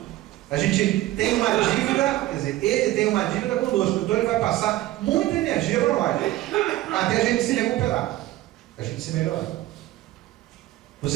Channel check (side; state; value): left; quieter; 16.0 dB